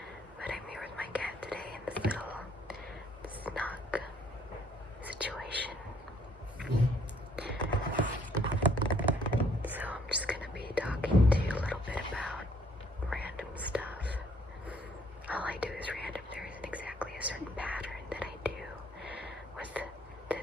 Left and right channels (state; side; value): normal; both; correlation 0.64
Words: But I'm here with my cat today in this little snug situation. So I'm just gonna be talking to you a little bit about random stuff. All I do is random. There isn't exactly a certain pattern that I do with